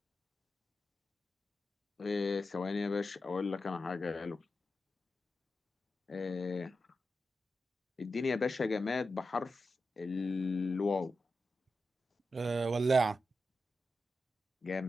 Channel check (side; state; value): both; normal; correlation 0.89